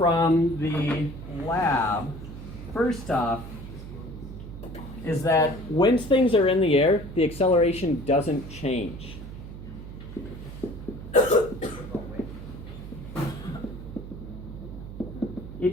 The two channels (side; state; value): right; noise; hum, 12 dB below the sound